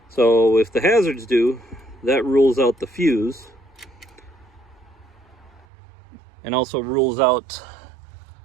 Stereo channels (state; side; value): drops out; left; at 5.7 s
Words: So if the hazards do, that rules out the fuse and also rules out